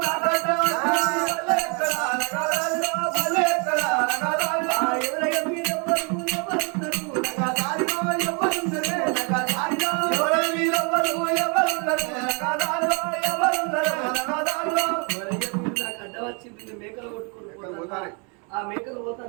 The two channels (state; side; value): quieter; left; 34.8 dB